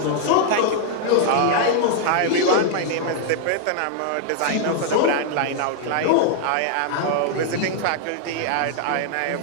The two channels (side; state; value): both; different; correlation -0.01